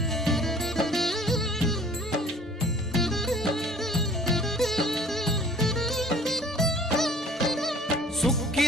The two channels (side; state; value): both; normal; correlation 0.52